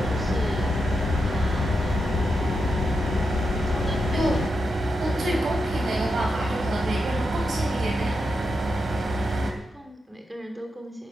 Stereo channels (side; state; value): both; normal; correlation 0.86